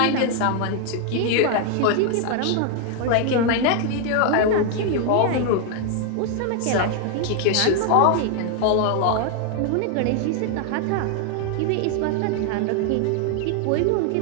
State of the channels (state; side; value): different; both; correlation 0.00